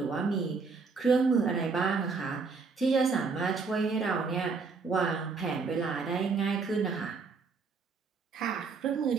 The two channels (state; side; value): quieter; left; 4.7 dB